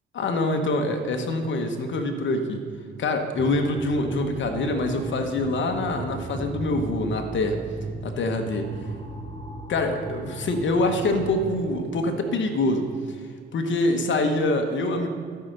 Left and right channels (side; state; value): both; normal; correlation 0.37